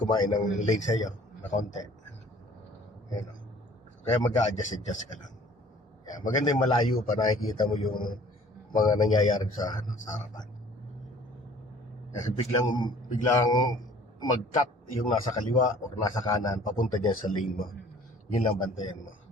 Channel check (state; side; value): normal; both; correlation 0.52